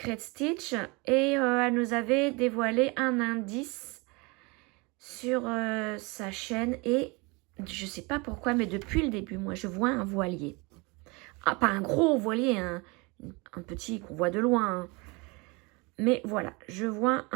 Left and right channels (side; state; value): left; quieter; 27.5 dB